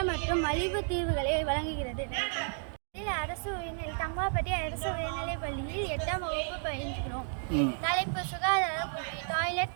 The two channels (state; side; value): silent; left; 56 dB below the other